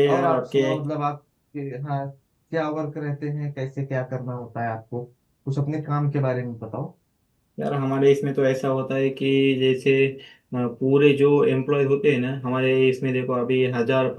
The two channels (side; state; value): both; identical; correlation 1.00